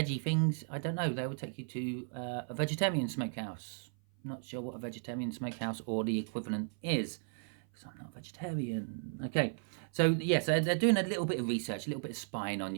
things, I don't know, they will take you to a vegetarian smokehouse. Not sure what a vegetarian smokehouse or the equivalent is, because I'm not a vegetarian. Okay, so yes, they're doing a little bit of research, a little bit of spying on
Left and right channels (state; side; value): silent; left; 54 dB below the other